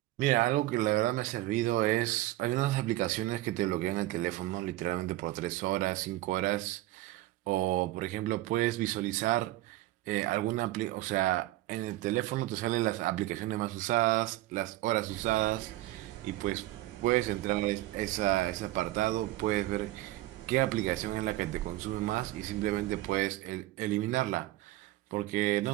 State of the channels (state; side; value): quieter; left; 16.7 dB